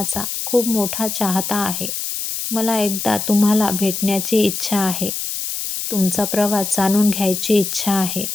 खूप मोठा चाहता आहे. मला एकदा तुम्हाला भेटण्याची इच्छा आहे. तुमचा प्रवास जाणून घ्यायची इच्छा आहे.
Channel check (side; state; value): left; noise; hiss, 4 dB below the sound